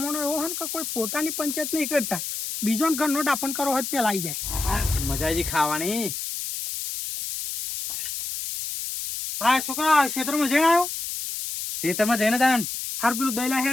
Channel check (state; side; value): noise; left; hiss, 5 dB below the sound